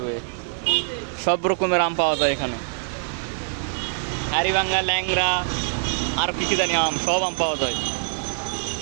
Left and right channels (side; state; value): left; silent; digital silence